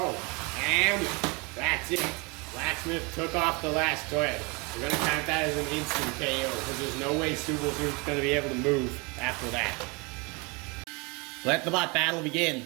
and that's it. Blacksmith took off the last thread. We're going to count that as an instant KO because there's no way Super Scoop's going to be able to move after that. Let the bot battle begin.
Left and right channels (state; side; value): quieter; left; 28.9 dB